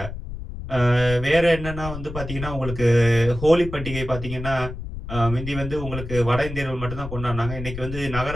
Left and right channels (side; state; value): left; noise; rumble, 9 dB below the sound